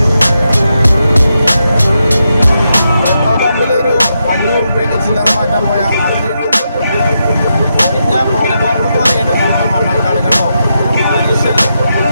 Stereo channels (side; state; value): both; inverted; correlation -0.85